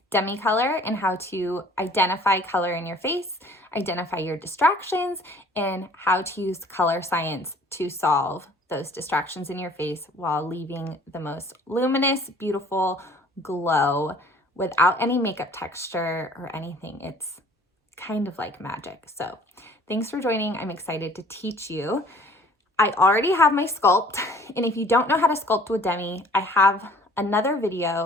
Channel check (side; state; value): both; normal; correlation 0.53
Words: Demi Colour and how to identify color in your face, identify your distractions, and how to use color science to solve those distractions in your face while leaving the most luminous, beautiful glow without any makeup texture or anything. It's kind of like magic. So thanks for joining. I'm excited to teach you. I already have my sculpt, and if you don't know how to sculpt with Demi, I have another